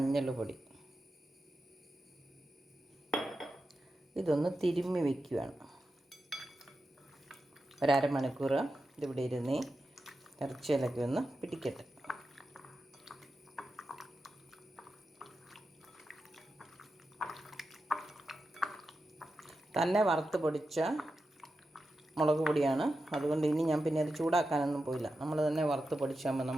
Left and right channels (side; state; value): both; normal; correlation 0.90